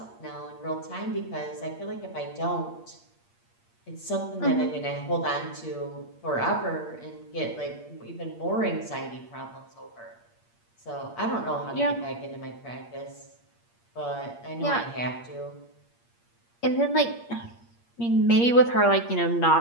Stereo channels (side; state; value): right; late; 8.5 ms